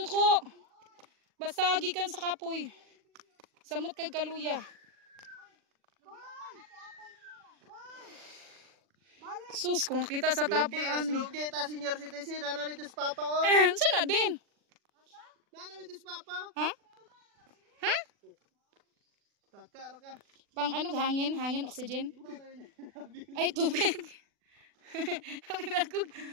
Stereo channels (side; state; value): left; late; 40 ms